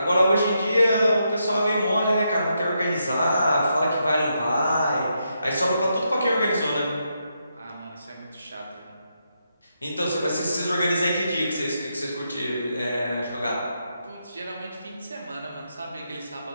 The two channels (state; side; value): inverted; both; correlation -0.81